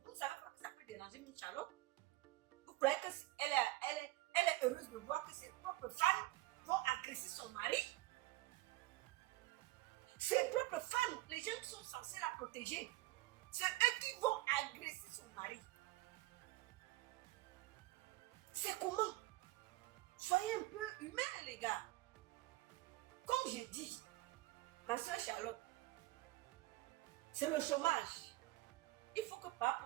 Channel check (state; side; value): quieter; left; 18.6 dB